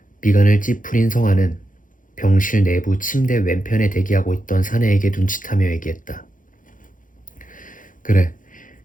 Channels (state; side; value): late; right; 0.39 ms